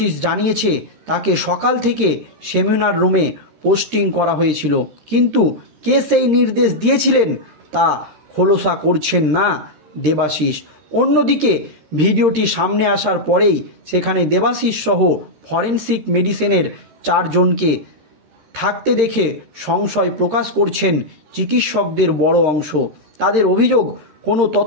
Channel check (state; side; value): late; left; 13 ms